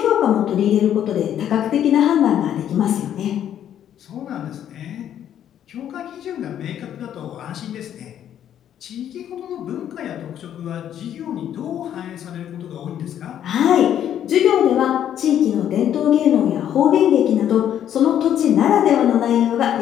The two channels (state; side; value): quieter; right; 10.3 dB